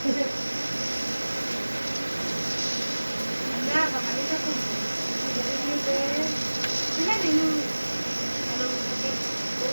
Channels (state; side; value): inverted; both; correlation -1.00